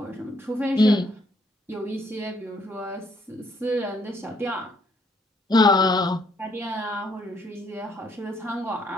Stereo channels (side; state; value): both; normal; correlation 0.69